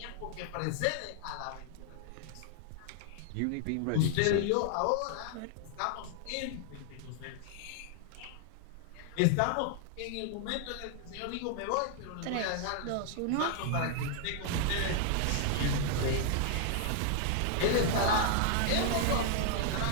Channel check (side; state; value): both; different; correlation 0.00